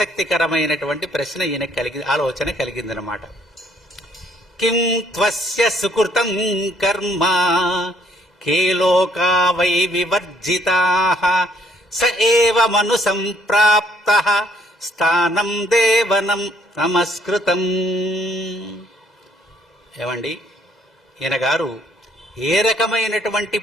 ప్రశ్న ఈయన ఆలోచన కలిగిందనమాట. కిం త్వస్య సుకృతం కర్మ కే లోకా వై వివర్జితాః స ఏవ మను సంప్రాప్తః స్థానం దేవనం నమస్కృతం. ఏమండి, ఈయన గారు ఏ రకమైనటువంటి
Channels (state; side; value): normal; both; correlation 0.66